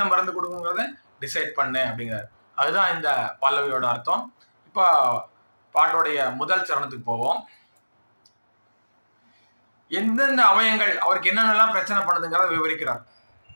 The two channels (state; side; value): inverted; both; correlation -1.00